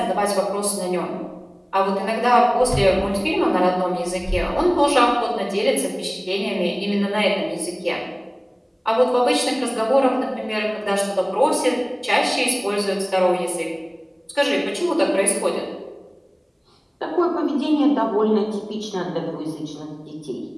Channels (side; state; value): both; identical; correlation 1.00